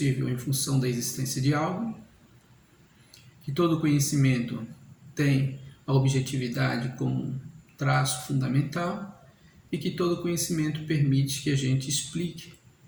em função da existência de algo, que todo conhecimento tem a objetividade como traço fundamental e que todo conhecimento permite que a gente explique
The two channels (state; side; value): identical; both; correlation 1.00